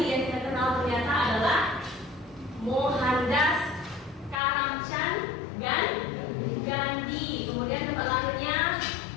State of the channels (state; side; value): drops out; right; at 4.4 s